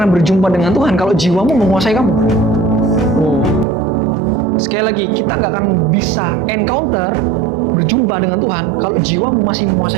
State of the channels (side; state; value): left; drops out; at 3.7 s